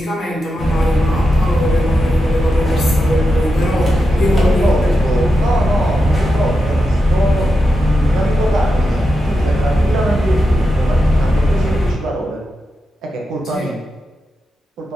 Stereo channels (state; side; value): normal; both; correlation 0.88